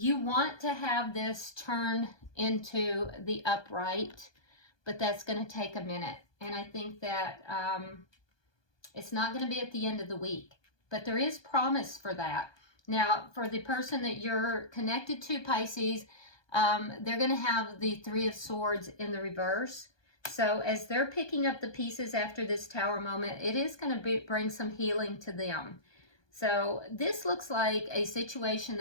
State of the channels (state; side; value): late; right; 1.2 ms